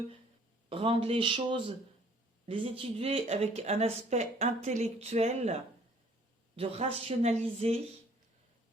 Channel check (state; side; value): normal; both; correlation 0.58